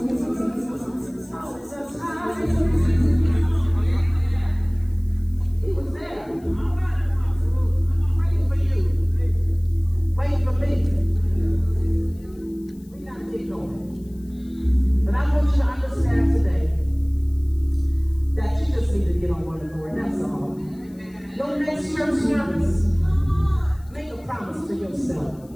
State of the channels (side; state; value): left; noise; hiss, 30 dB below the sound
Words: the time. He was there, waiting for you, waiting for me. We gotta get going. But I want you to understand today that you just need to get on one accord. That's all. No next church service. Make a promise to yourself